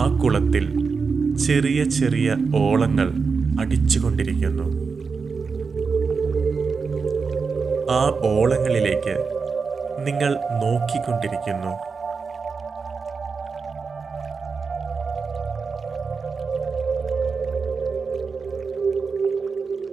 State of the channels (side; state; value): left; quieter; 5.1 dB